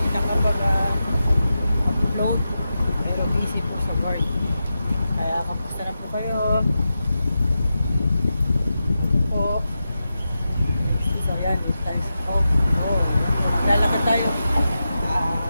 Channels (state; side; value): inverted; both; correlation -0.90